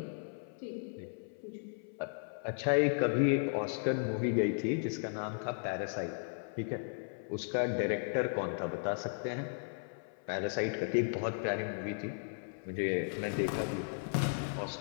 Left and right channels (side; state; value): right; silent; 54 dB below the other